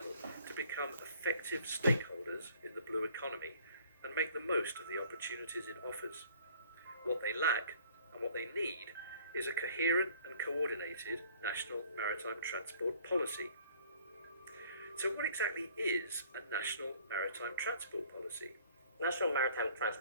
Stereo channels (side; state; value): both; inverted; correlation -0.55